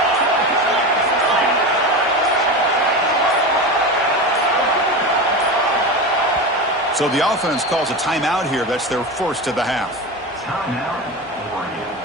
So the offense calls a timeout here. That's their first of the half.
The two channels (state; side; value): normal; both; correlation 0.24